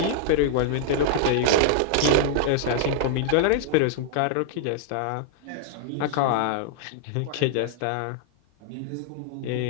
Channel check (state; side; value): different; both; correlation -0.01